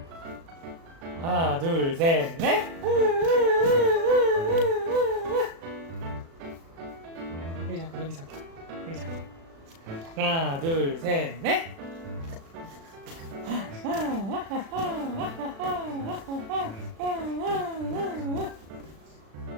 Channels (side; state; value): left; late; 36 ms